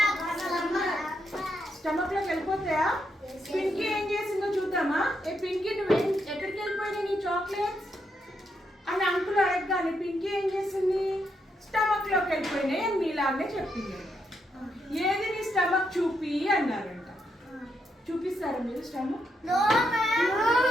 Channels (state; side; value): normal; both; correlation 0.80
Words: పింకీ ఏం చేసిందో చూద్దామా? ఏ పింకీ నువ్వేం ఎక్కడికి వెళ్ళిపోయినాయి నీ చాక్లెట్స్ అని అంకుల్ అడగగానే పింకీ ఏం చేసింది? స్టమక్ లోకి వెళ్ళిపోయినాయి అని మీలాగే చెప్పింది. ఏది నీ స్టమక్ చూపి అన్నారంట. చూపిస్తారా మీరు స్టమక్?